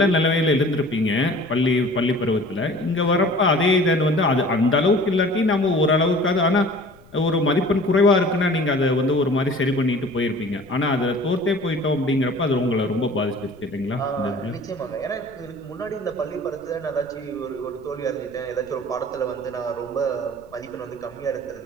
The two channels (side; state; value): left; noise; rumble, 26 dB below the sound